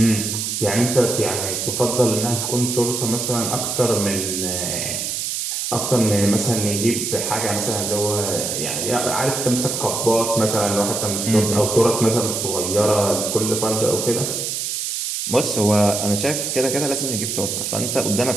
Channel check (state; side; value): noise; right; hiss, 2 dB below the sound